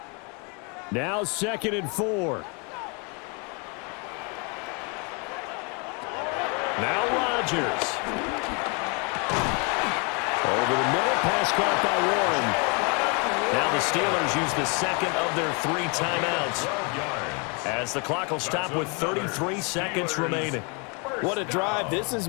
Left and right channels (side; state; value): right; quieter; 33.5 dB